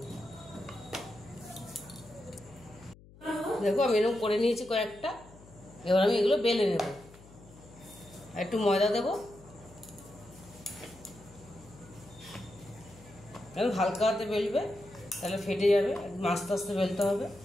দেখো আমি এরকম করে নিয়েছি কয়েকটা। এবার আমি এগুলো বেলে নেব। একটু ময়দা দেবো, এখন হালকা হাতে বেলবে, তাহলে ফেটে যাবে। আস্তে আস্তে বেলতে হবে।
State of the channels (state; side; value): noise; left; hum, 22 dB below the sound